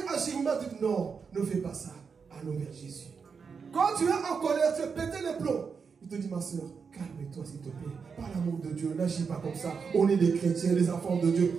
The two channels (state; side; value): quieter; left; 5.7 dB